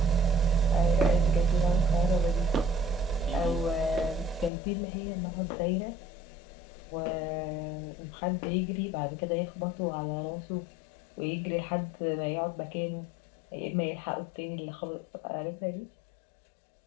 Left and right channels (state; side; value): drops out; right; at 4.5 s